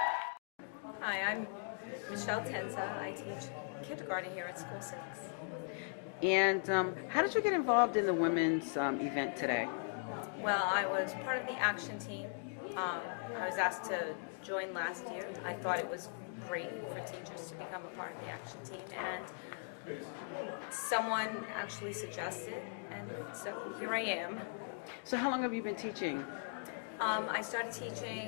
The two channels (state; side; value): silent; right; digital silence